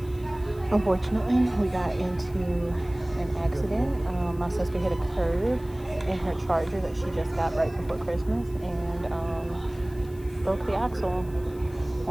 unfortunately, we got into an accident. My sister hit a curb in her Charger that she just got right before Christmas, and broke the axle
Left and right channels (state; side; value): noise; left; hiss, 25 dB below the sound